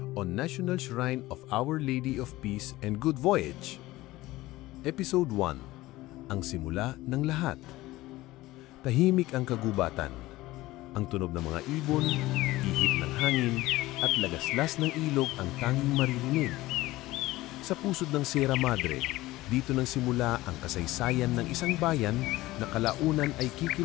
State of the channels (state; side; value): quieter; right; 18.0 dB